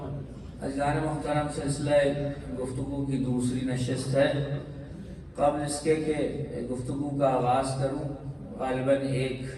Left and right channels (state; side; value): identical; both; correlation 1.00